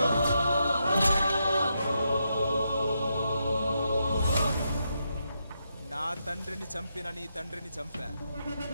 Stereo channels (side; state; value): both; inverted; correlation -0.83